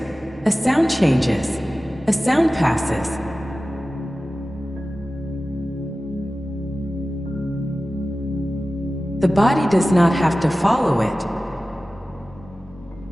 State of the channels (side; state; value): both; normal; correlation 0.95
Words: A sound changes. A sound passes. The body does not have to follow it.